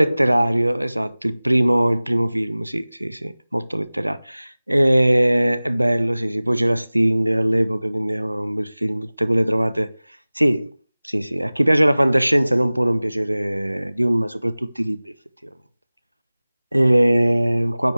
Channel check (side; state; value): both; inverted; correlation -0.99